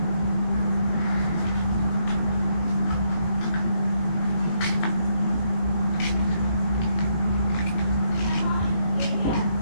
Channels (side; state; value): right; late; 18 ms